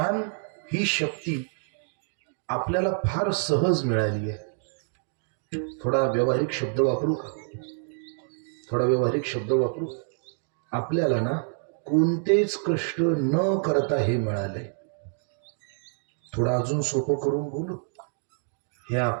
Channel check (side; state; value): left; silent; 60 dB below the other